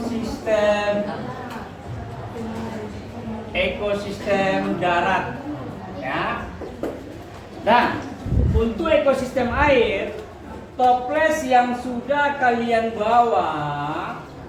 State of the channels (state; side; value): identical; both; correlation 1.00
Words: darat. Ya. Dan untuk ekosistem air, toples yang sudah kalian bawa